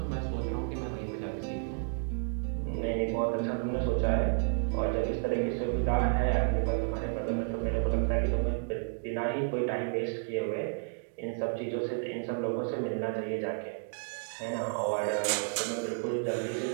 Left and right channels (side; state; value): left; silent; 57 dB below the other